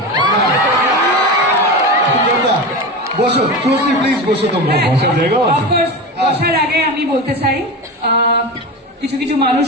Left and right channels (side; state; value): both; normal; correlation 0.24